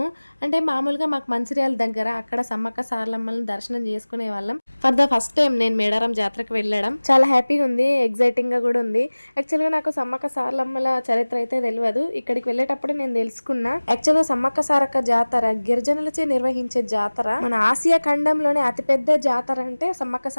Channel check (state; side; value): inverted; both; correlation -1.00